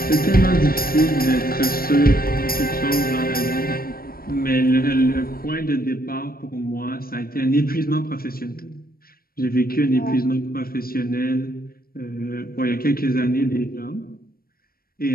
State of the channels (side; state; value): right; late; 0.43 ms